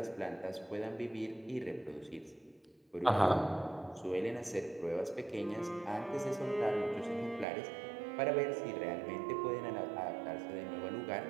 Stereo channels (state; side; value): drops out; left; at 7.5 s